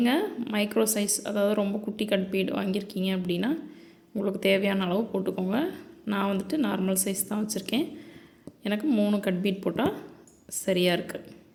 மைக்ரோ சைஸ், அதாவது ரொம்ப குட்டி கட் பீட் வாங்கியிருக்கீங்க அப்படின்னா உங்களுக்கு தேவையான அளவு போட்டுக்கோங்க. நான் வந்துட்டு நார்மல் சைஸ் தான் வச்சுருக்கேன். எனக்கு 3 கட் பீட் போட்டால் சரியாக இருக்குது.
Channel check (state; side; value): identical; both; correlation 1.00